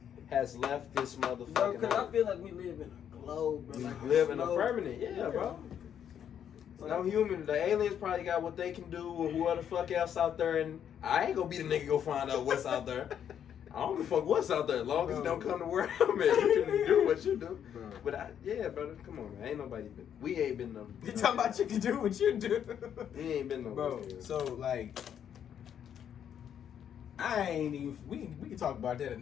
has left this motherfucking Bro, because I earth. feel like we live in a globe, bro. We Like live in a globe. permanent. Yeah, bro. No human. The aliens probably got what they can do or whoever the fuck else out there. And I ain't gonna be the nigga go find out what's out there. I don't give a fuck what's out there as long as it don't come to where I'm at. You can do what you do. Bro. But yeah, brother, come on, man. Ain't nobody been. We ain't been no. You talking about you can do what you do, We ain't been no. bro. So like, I ain't even. We can talk about that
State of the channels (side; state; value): right; quieter; 9.0 dB